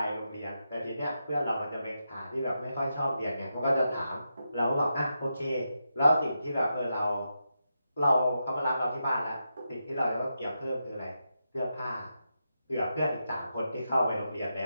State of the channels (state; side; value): inverted; both; correlation -0.86